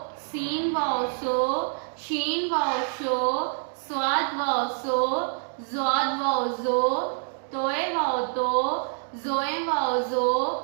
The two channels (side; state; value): left; silent; digital silence